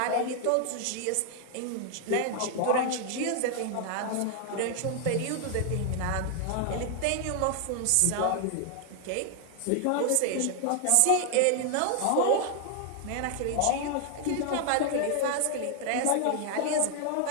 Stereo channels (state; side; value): different; both; correlation 0.00